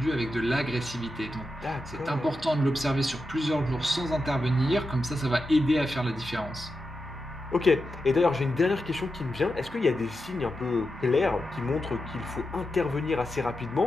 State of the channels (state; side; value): normal; both; correlation 0.89